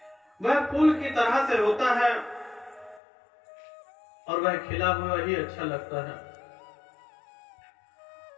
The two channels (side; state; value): right; drops out; at 3.0 s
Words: वह फूल की तरह से होता है और वह खिला हुआ ही अच्छा लगता है,